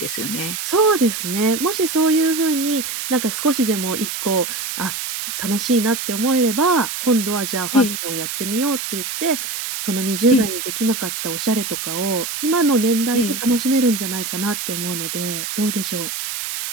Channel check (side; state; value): right; noise; hiss, 5 dB below the sound